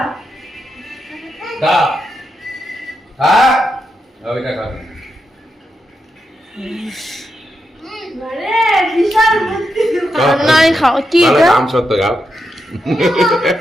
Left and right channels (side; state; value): both; normal; correlation 0.85